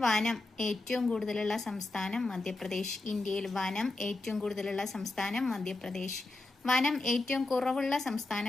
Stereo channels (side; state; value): right; quieter; 3.0 dB